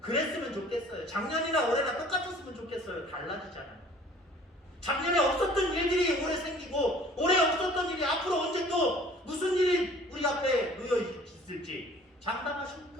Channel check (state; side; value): normal; both; correlation 0.51